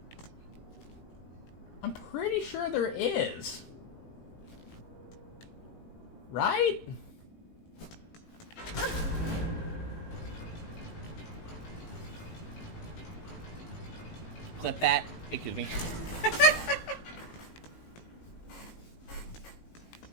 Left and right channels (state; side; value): late; right; 18 ms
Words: I'm pretty sure there is. Right? Clip that. Excuse me.